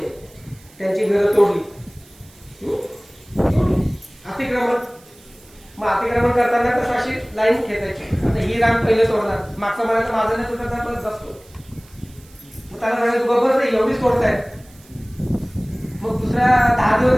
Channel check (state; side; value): noise; right; hiss, 26 dB below the sound